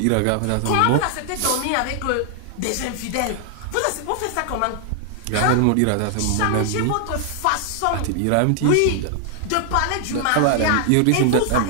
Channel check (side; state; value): both; different; correlation 0.00